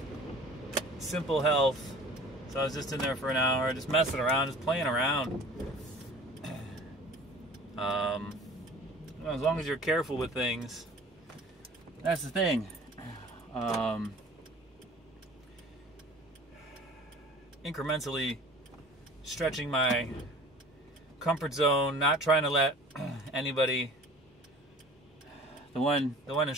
Simple health. So I was just in there for an hour, just messing around, just playing around. As long as you're careful with things, that's the thing. Incrementally stretching my comfort zone, not trying to let anybody. The one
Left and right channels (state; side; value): normal; both; correlation 0.44